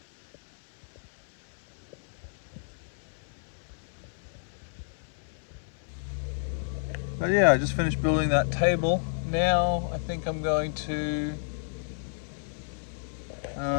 But yeah, I just finished building that table. Now I think I'm going to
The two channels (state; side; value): silent; right; 58 dB below the other